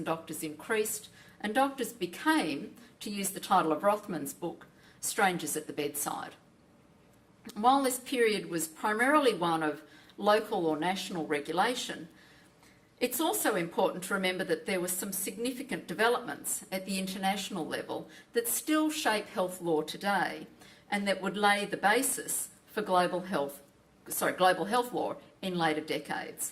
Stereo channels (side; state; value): both; identical; correlation 1.00